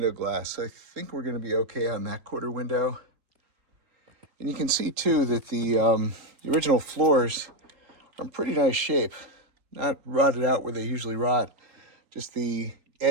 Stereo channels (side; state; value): left; late; 3.8 ms